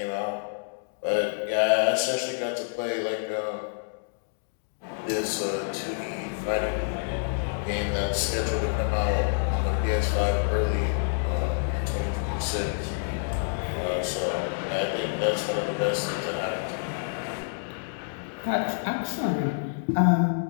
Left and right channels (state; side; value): silent; right; digital silence